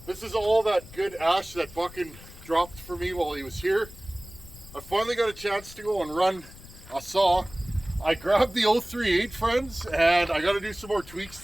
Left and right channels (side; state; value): left; noise; rumble, 18 dB below the sound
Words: This is all that good ash that Buckin dropped for me while he was here. I finally got a chance to go and run a saw. I grabbed the 038, friends, and I got to do some more tweaks